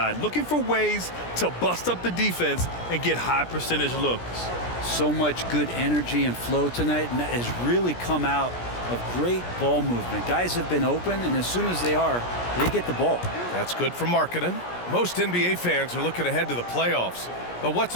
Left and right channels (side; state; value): right; late; 17 ms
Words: looking for ways to bust up the defense and get high percentage looks. So much good energy and flow tonight, and that has really come out of great ball movement. Guys have been open, and as soon as they are, they get the ball. That's good for Markkanen. Most NBA fans are looking ahead to the playoffs. But what's